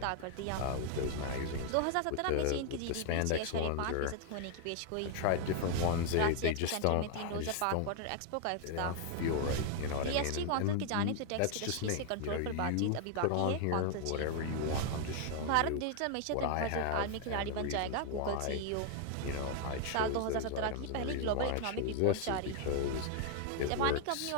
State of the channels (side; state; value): both; different; correlation 0.00